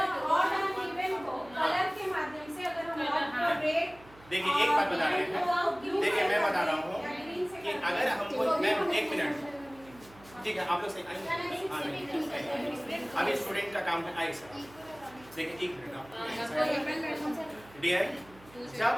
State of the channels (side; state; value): right; noise; hum, 23 dB below the sound